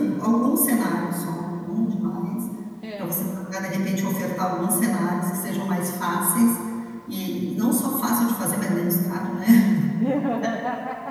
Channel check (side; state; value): both; identical; correlation 1.00